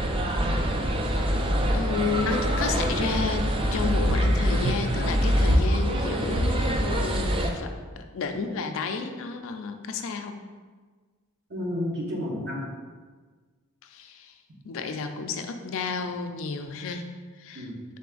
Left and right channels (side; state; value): both; normal; correlation 0.67